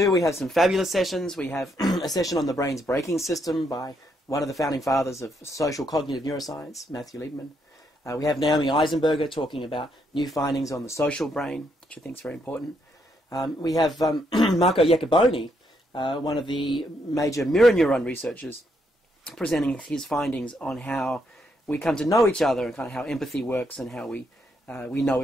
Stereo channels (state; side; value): normal; both; correlation 0.76